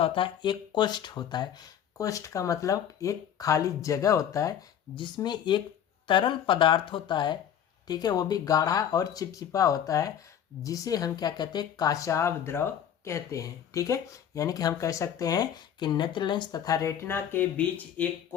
होता है, एक कोष्ठ होता है। कोष्ठ का मतलब एक खाली जगह होता है जिसमें एक तरल पदार्थ होता है, ठीक है, वो भी गाढ़ा और चिपचिपा होता है, जिसे हम क्या कहते हैं, काचाभ द्रव कहते हैं, ठीक है। यानी कि हम कह सकते हैं कि नेत्र लेंस तथा रेटिना के बीच एक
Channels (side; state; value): right; quieter; 9.4 dB